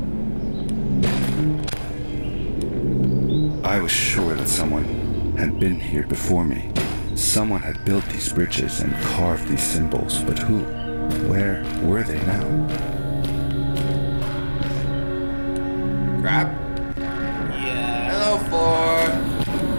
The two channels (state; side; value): inverted; both; correlation -1.00